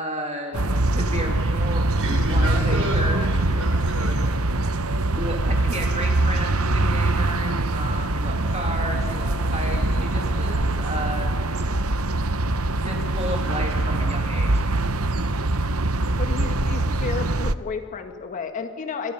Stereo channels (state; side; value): normal; both; correlation 0.68